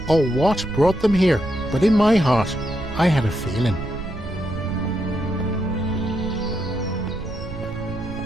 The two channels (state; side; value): noise; right; rumble, 10 dB below the sound